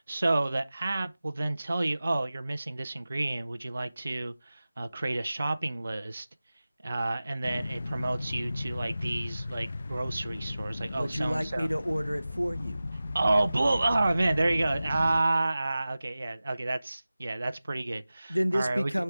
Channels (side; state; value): both; inverted; correlation -0.96